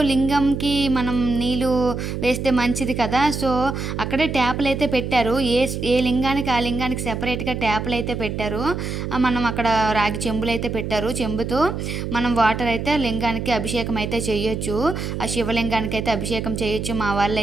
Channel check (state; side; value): noise; right; hum, 4 dB below the sound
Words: లింగంకి మనం నీళ్ళు వేస్తే మంచిది కదా. సో అక్కడే ట్యాపులు అయితే పెట్టారు, ఏ లింగానికి ఆ లింగానికి సెపరేట్గా ట్యాపులు అయితే పెట్టారు. మనం అక్కడ రాగి చెంబులు అయితే పెట్టారు, చెంబుతో మనం వాటర్ అయితే లింగానికి అభిషేకం అయితే చేయొచ్చు, ఆ శివలింగానికి అయితే అభిషేకం చేయొచ్చు. మా వాళ్ళు